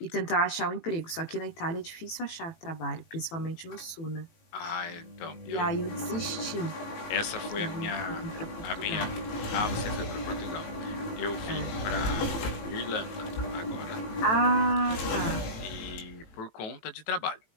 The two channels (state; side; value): late; right; 18 ms